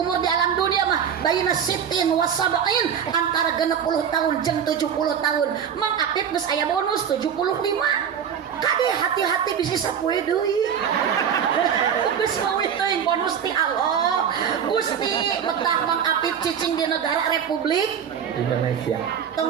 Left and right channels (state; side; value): quieter; left; 8.0 dB